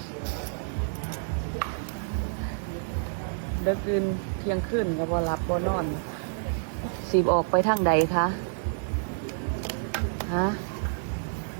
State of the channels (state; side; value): silent; left; digital silence